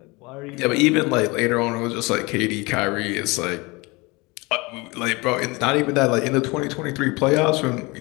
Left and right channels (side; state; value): right; quieter; 25.2 dB